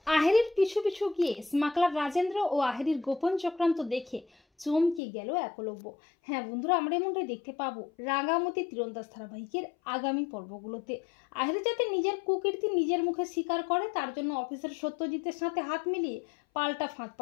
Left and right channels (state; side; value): drops out; right; at 5.0 s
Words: আহেরির পিছু পিছু গিয়ে স্মাগলার রাজেন্দ্র ও আহেরির গোপন চক্রান্ত দেখে চমকে গেল একলব্য। হ্যাঁ বন্ধুরা, আমরা এমনটাই দেখতে পাবো রাঙামতি তীরন্দাজ ধারাবাহিকের আগামী পর্বগুলোতে। আহেরি যাতে নিজের কুকীর্তি নিজের মুখে স্বীকার করে, তার জন্য অফিসার সত্যজিতের সাথে হাত মিলিয়ে পাল্টা ফাঁদ